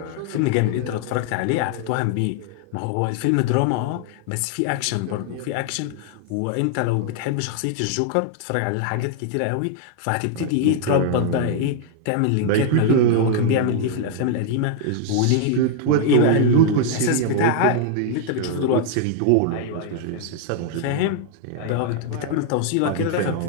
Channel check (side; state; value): both; different; correlation 0.00